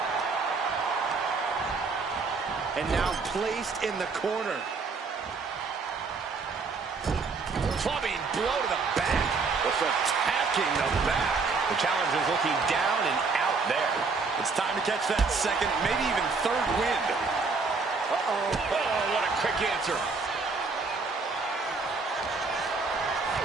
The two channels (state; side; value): quieter; left; 4.4 dB